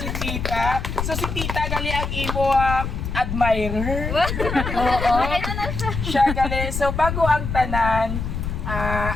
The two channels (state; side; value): noise; left; rumble, 4 dB below the sound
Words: Tita. So si Tita gali ang imo admirer. Oo. Ito na siya. Siya gali. So bago ang tanan,